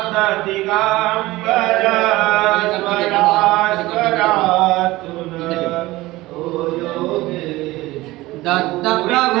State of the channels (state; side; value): quieter; left; 18.8 dB